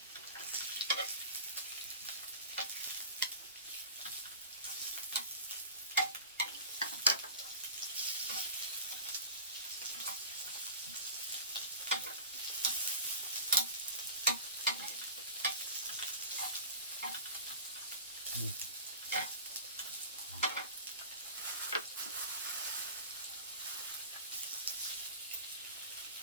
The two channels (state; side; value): inverted; both; correlation -0.36